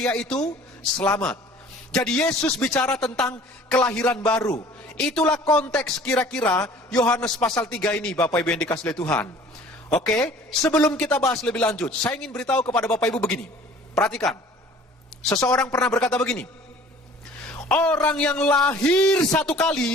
itu, selamat. Jadi Yesus bicara tentang kelahiran baru. Itulah konteks kira-kira Yohanes pasal 3 ini Bapak Ibu yang dikasihi Tuhan. Oke, sebelum kita bahas lebih lanjut, saya ingin beritahu kepada Bapak Ibu begini. Perhatikan, seseorang pernah berkata begini, orang yang lahir satu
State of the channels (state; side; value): normal; both; correlation 0.49